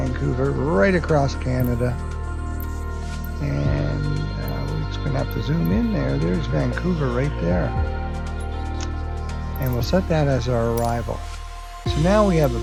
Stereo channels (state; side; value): identical; both; correlation 1.00